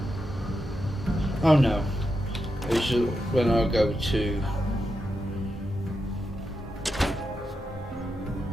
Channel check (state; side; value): normal; both; correlation 0.86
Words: Oh no. It's just when I go to